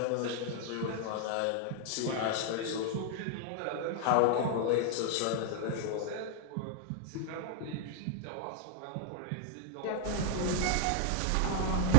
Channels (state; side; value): different; both; correlation 0.00